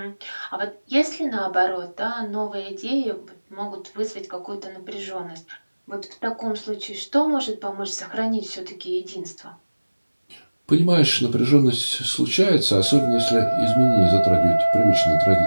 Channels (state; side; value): inverted; both; correlation -1.00